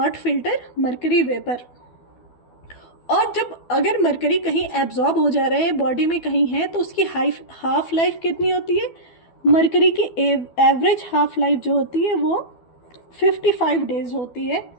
filter mercury vapour. और जब अगर मरकरी कहीं एब्जॉर्ब हो जा रहा है बॉडी में कहीं है तो उसकी हाफ लाइफ कितनी होती है? मरकरी की एवरेज हाफ लाइफ जो होती है वो 55 डेज होती है।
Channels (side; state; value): right; late; 12 ms